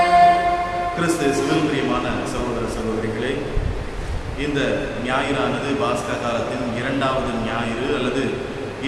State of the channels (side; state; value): both; identical; correlation 1.00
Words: கிறிஸ்துவில் பிரியமான சகோதர சகோதரிகளே, இந்த ஞாயிறானது பாஸ்கா காலத்தின் இரண்டாவது ஞாயிறு அல்லது